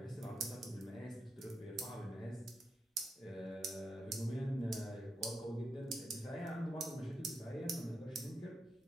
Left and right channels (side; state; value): both; normal; correlation 0.85